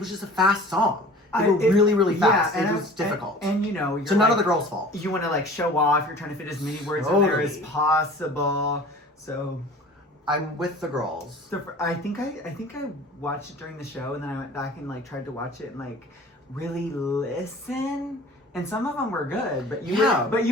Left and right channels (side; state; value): both; normal; correlation 0.44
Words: just a fast song. They were really, really fast. Yeah, It was difficult. And you know, you're so none like, of the girls' fault. You want to like show off. You're trying to fit as many words in there as Totally. possible. So I'm with the girls. I think I watched it during the show, and then I went back and like tried to watch it and like really listen. And some of them were good, but